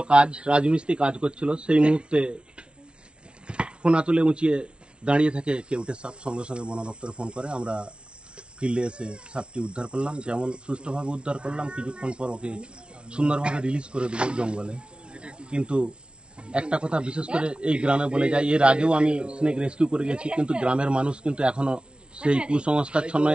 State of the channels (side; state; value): left; late; 0.058 ms